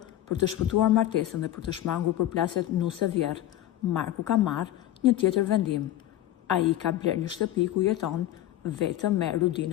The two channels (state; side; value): quieter; right; 13.4 dB